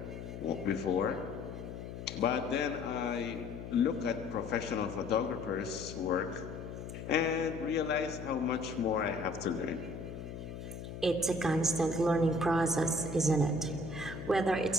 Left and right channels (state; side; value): noise; left; hum, 9 dB below the sound